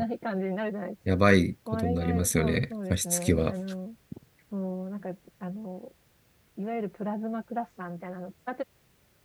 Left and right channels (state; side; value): identical; both; correlation 1.00